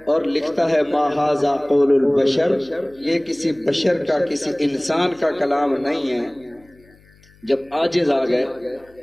اور لکھتا ہے ما ھذا قول البشر، یہ کسی بشر کا، کسی انسان کا کلام نہیں ہے. جب عاجز آ گئے،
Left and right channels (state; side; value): noise; left; hum, 29 dB below the sound